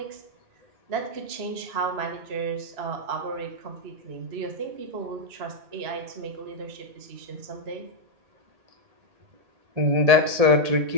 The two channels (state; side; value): late; left; 1.8 ms